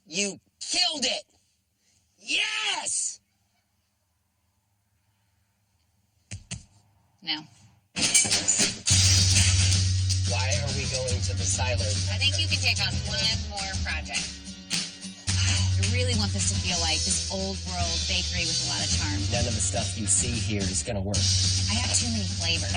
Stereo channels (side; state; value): both; identical; correlation 1.00